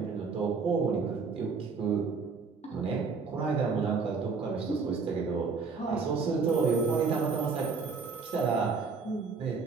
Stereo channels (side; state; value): left; quieter; 4.8 dB